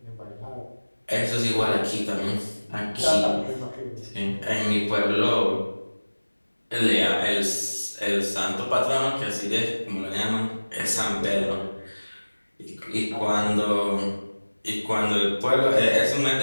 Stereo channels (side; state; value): both; inverted; correlation -1.00